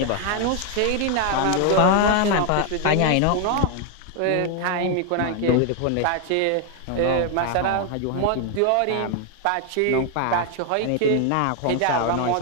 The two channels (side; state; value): both; different; correlation 0.00